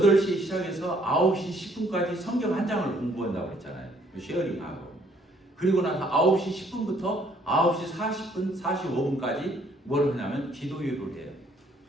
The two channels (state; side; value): normal; both; correlation 0.64